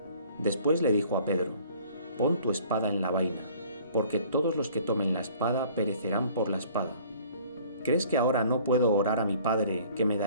Después le dijo a Pedro: «Pon tu espada en la vaina, porque todos los que tomen la espada perecerán por la espada. ¿Crees que ahora no puedo orar a mi Padre, que me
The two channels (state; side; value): inverted; both; correlation -0.53